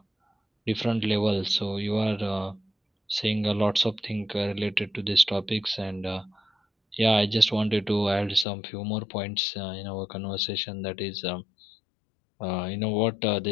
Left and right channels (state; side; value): drops out; right; at 8.5 s